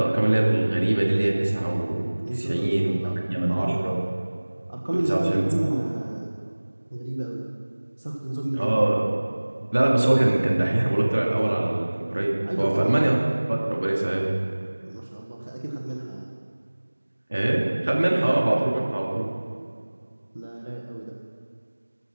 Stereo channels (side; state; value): both; inverted; correlation -1.00